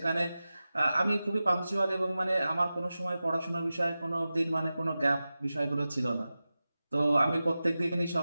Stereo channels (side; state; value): both; inverted; correlation -0.95